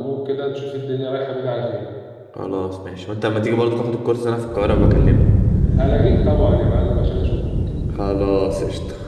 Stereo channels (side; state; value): both; identical; correlation 1.00